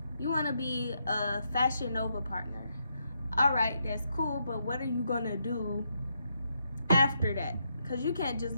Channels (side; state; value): both; inverted; correlation -0.79